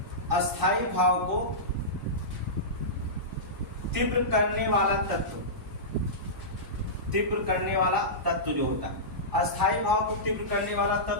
अस्थायी भाव को तीव्र करने वाला तत्व, तीव्र करने वाला तत्व जो होता है, अस्थायी भाव को तीव्र करने वाला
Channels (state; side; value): normal; both; correlation -0.17